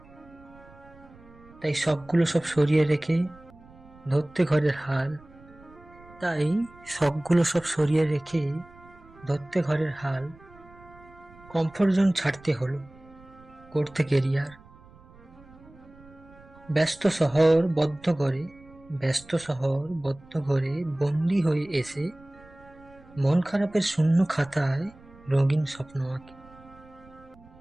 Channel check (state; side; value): noise; right; rumble, 24 dB below the sound